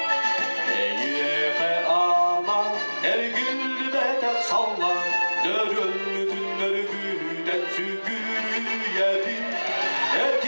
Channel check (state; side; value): inverted; both; correlation -1.00